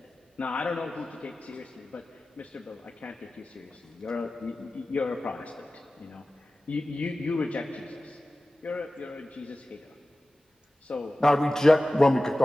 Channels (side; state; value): both; normal; correlation 0.96